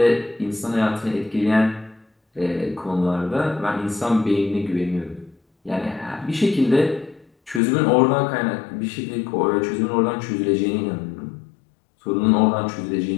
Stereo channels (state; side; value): drops out; right; at 7.6 s